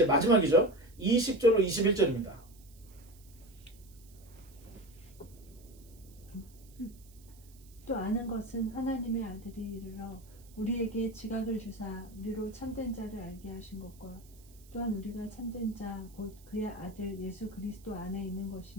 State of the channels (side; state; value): right; noise; hiss, 26 dB below the sound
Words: 마지막이죠. 20절로 21절입니다. 또 아는 것은 하나님의 아들이 이르러 우리에게 지각을 주사 우리로 참된 자를 알게 하신 것과 또한 우리가 참된 자 곧 그의 아들 예수 그리스도 안에 있는